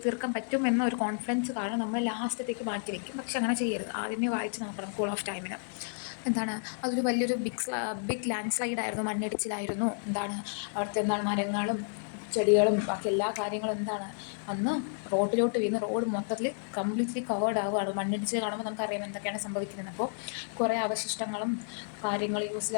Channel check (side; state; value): right; silent; 57 dB below the other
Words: തീർക്കാൻ പറ്റും എന്ന ഒരു കോൺഫിഡൻസ് കാരണം നമ്മൾ ലാസ്റ്റത്തേക്ക് മാറ്റി വയ്ക്കും. പക്ഷെ അങ്ങനെ ചെയ്യരുത്. ആദ്യമേ വായിച്ച് നോക്കണം കൂൾ ഓഫ് ടൈമിന്. എന്താണ് അതൊരു വലിയൊരു ബിഗ് ലാൻഡ് സ്ലൈഡ് ആയിരുന്നു, മണ്ണിടിച്ചിലായിരുന്നു. അവിടുത്തെ മരങ്ങളും ചെടികളും ബാക്കി എല്ലാ കാര്യങ്ങളും അന്ന് റോഡിലോട്ട് വീണ് റോഡ് മൊത്തത്തിൽ കംപ്ലീറ്റ്ലി കവേർഡ് ആവുകയാണ്. മണ്ണിടിച്ച് കാണുമ്പോൾ നമുക്കറിയാം എന്തൊക്കെയാണ് സംഭവിക്കുന്നത്. അപ്പോൾ കുറേ അവശിഷ്ടങ്ങളും കാര്യങ്ങൾ യൂസ്